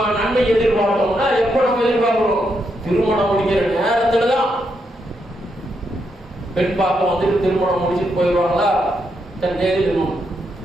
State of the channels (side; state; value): both; normal; correlation 0.80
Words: நன்மை எதிர்பார்த்தோம்னா எப்ப நம்ம எதிர்பார்க்கிறோம்? திருமணம் முடிக்கிற நேரத்துலதான். பெண் பார்க்க வந்துட்டு திருமணம் முடிச்சுட்டு போயிடுவாங்களா? தன் தேதி